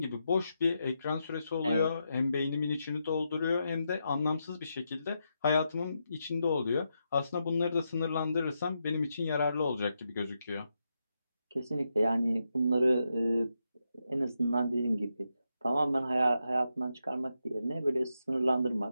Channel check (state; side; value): inverted; both; correlation -0.84